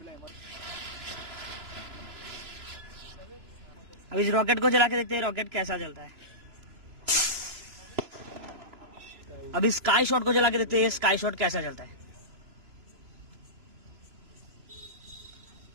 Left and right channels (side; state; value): left; late; 3.0 ms